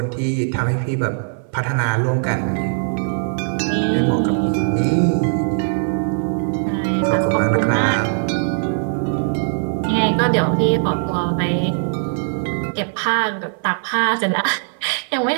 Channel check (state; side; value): silent; left; 57 dB below the other